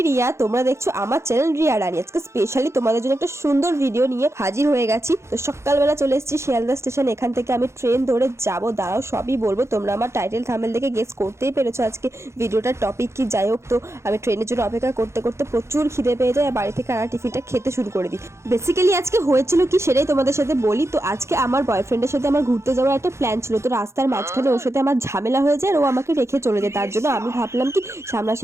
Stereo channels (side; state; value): left; late; 0.13 ms